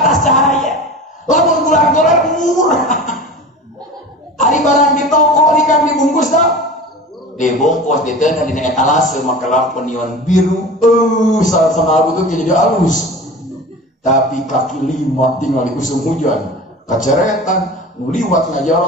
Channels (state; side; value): normal; both; correlation 0.35